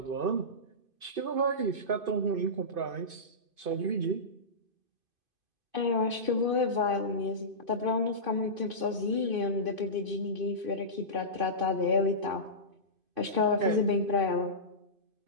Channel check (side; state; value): left; late; 2.5 ms